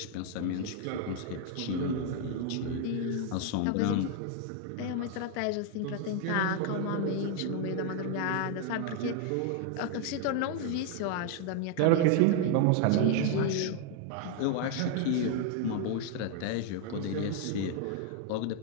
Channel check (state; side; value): different; both; correlation 0.00